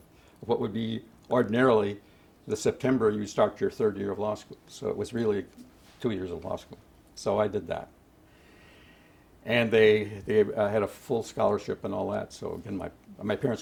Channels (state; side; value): identical; both; correlation 1.00